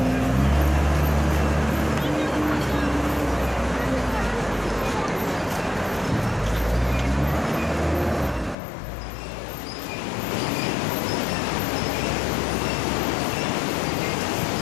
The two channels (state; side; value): drops out; right; at 8.6 s